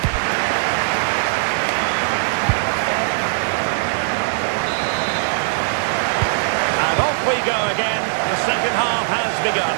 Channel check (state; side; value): silent; left; 66 dB below the other